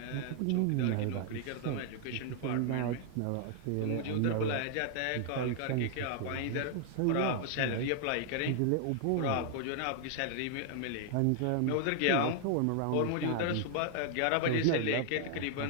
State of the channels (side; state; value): both; different; correlation 0.00